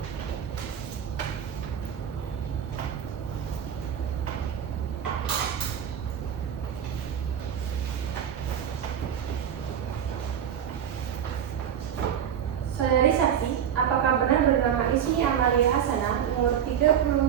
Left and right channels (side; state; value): left; quieter; 8.9 dB